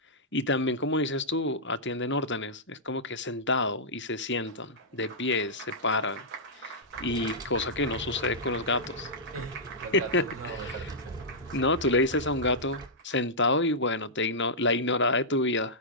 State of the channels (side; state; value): both; normal; correlation -0.13